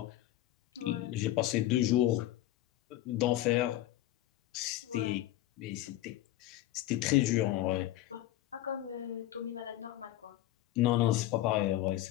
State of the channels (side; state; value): right; quieter; 14.8 dB